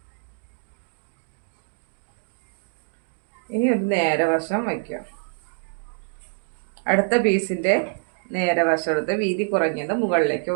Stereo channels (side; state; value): left; silent; 61 dB below the other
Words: ഇനി ഒരു നേരെ വശം വയ്ക്കാം. അടുത്ത പീസിന്റെ നേരെ വശം എടുത്ത് വീതി കുറഞ്ഞത് മുകളിലേക്ക്